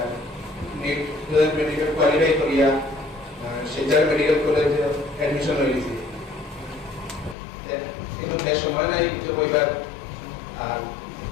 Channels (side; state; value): right; drops out; at 7.4 s